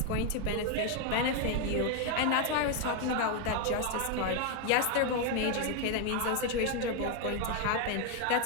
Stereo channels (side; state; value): both; different; correlation 0.01